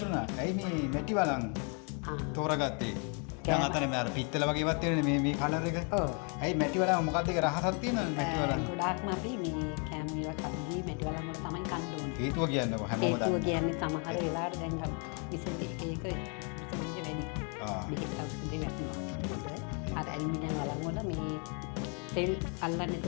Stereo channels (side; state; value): right; quieter; 37.4 dB